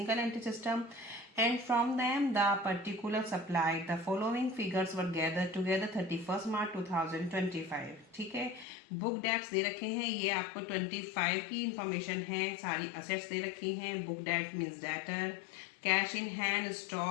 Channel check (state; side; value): drops out; right; at 8.7 s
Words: entry system, and from them the particular supplied the following figures were gathered together 31st March 2025. ठीक है, book dates दे रखे हैं, ये आपको 25 की information है, सारी assets दे रखी हैं. Book that means debtor, cash in hand,